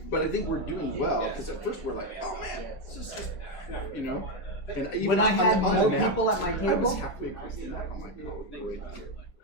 But I think we're doing well because at first we're like, oh man, this is just, you know. And even When I had on more the map, people at my I was table, halfway across the map. I'm like, oh, great.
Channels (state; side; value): late; right; 4.5 ms